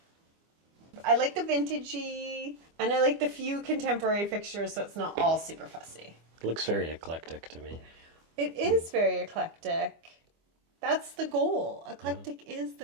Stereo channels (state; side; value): late; left; 25 ms